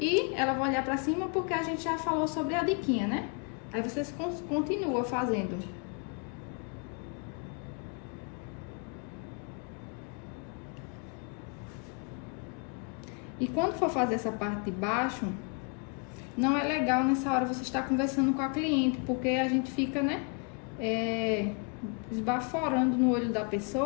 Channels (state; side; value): quieter; right; 36.3 dB